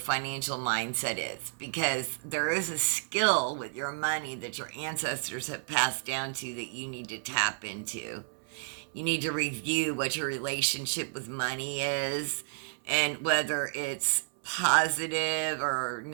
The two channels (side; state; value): left; silent; 57 dB below the other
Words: mindset is, because there is a skill with your money that your ancestors have passed down to that you need to tap into. You need to review what your relationship with money is, and whether it's positive or